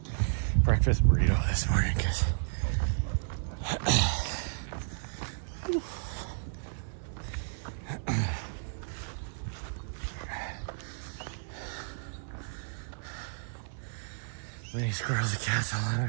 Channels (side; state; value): left; silent; 56 dB below the other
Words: breakfast burrito this morning because Many squirrels and cats all